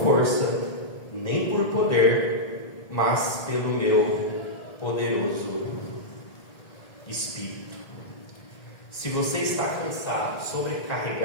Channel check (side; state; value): right; late; 1.7 ms